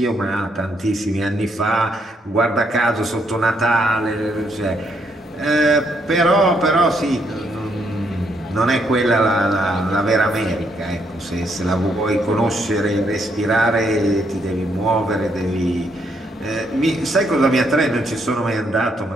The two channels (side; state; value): both; normal; correlation 0.74